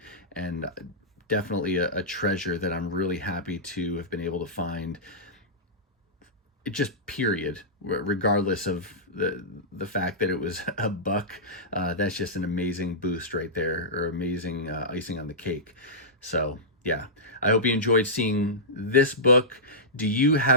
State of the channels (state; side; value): normal; both; correlation -0.14